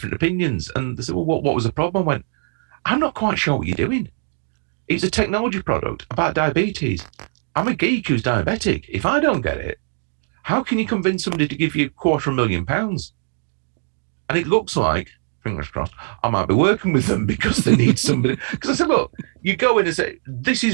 opinions. And they said, well, what was the problem? I went, I'm not quite sure what you're doing. It's a technology product about diabetes. I'm a geek who's diabetic. If I don't get it, how can you convince somebody to give you £250,000? And it looks like, fingers crossed, I might be working with them because they need somebody. Because I said, look, you go in and say, this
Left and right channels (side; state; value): left; silent; digital silence